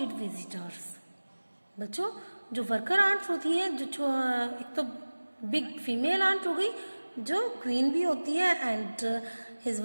visitors. बच्चों, जो worker ants होती हैं, जो एक तो big female aunt हो गई जो क्वीन भी होती है, and his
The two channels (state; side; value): inverted; both; correlation -1.00